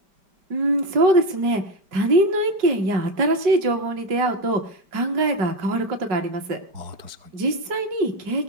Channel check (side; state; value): left; late; 5.4 ms